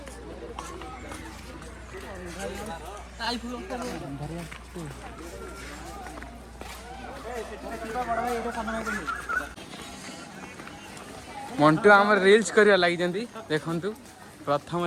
मंटू आम रील्स करिया लगी जंदी देखंतु प्रथम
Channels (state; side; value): identical; both; correlation 1.00